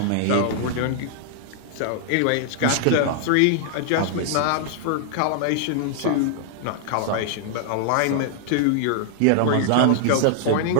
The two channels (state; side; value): different; both; correlation 0.00